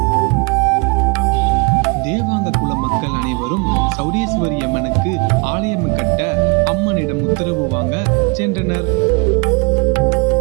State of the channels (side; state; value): left; quieter; 32.1 dB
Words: தேவாங்க குல மக்கள் அனைவரும் சௌடேஸ்வரி அம்மனுக்கு ஆலயம் கட்ட அம்மனிடம் உத்தரவு வாங்க சென்றனர்.